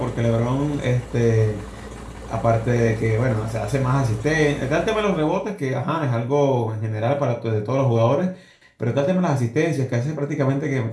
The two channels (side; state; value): both; identical; correlation 1.00